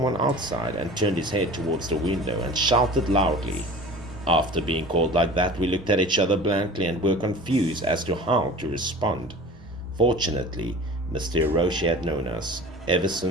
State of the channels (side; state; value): both; normal; correlation 0.40